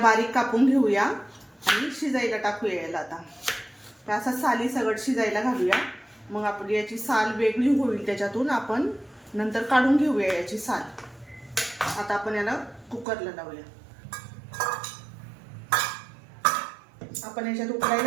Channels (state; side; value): drops out; left; at 13.1 s